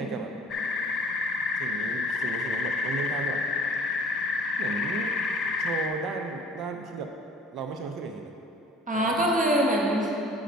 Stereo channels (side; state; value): both; normal; correlation 0.49